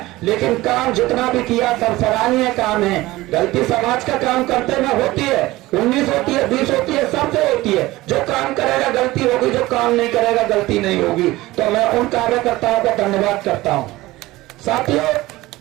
लेकिन काम जितना भी किया सब सराहनीय काम है। गलती समाज का काम करते में होती है, 19 होती है, 20 होती है, सबसे होती है। जो काम करेगा गलती होगी, जो काम नहीं करेगा गलती नहीं होगी। तो मैं उन कार्यकर्ताओं का धन्यवाद करता हूं। साथियों,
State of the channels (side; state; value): left; quieter; 18.5 dB